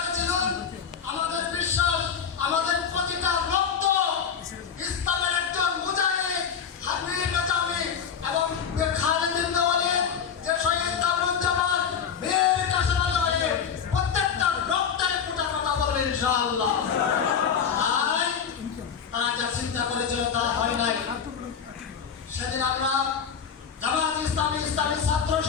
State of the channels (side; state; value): right; quieter; 7.2 dB